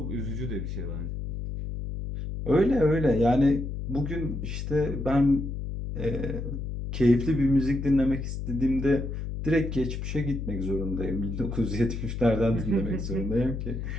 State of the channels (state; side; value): noise; left; hum, 5 dB below the sound